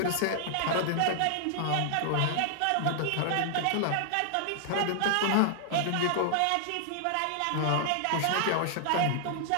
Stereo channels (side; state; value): both; different; correlation -0.01